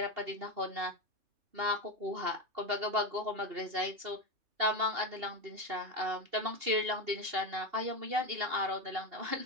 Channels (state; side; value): late; left; 2.8 ms